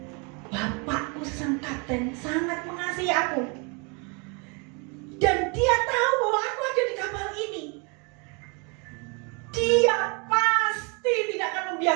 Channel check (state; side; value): quieter; left; 32.9 dB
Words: Bapakku sang kapten sangat mengasihi aku. Dan dia tahu bahwa aku ada di kapal ini. Dia pasti tidak akan